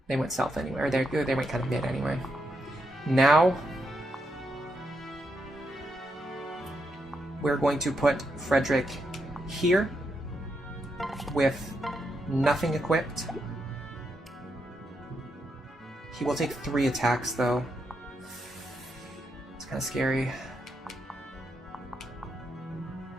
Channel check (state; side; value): normal; both; correlation 0.82